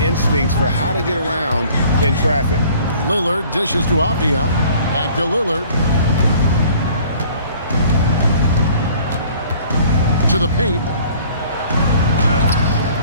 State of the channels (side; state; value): both; inverted; correlation -0.53